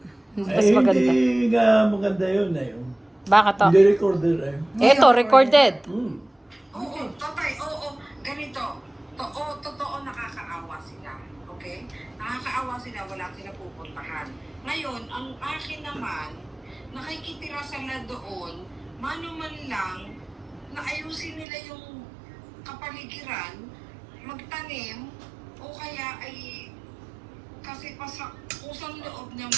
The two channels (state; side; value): drops out; left; at 21.5 s